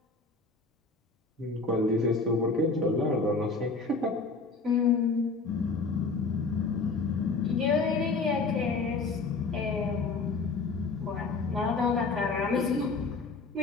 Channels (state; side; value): quieter; right; 4.0 dB